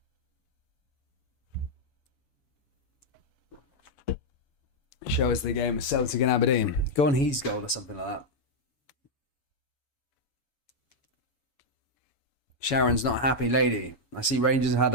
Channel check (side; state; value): right; late; 7.1 ms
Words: Show us the game of Celtic and Aberdeen. Go on his goal or something like that. Sharon's not happy lady. I see Rangers have had